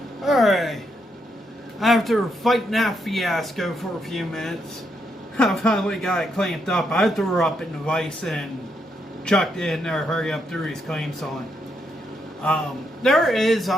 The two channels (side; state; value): both; normal; correlation 0.79